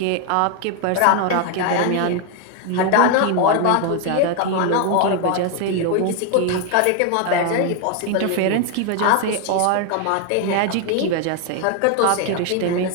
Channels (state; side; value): different; both; correlation 0.01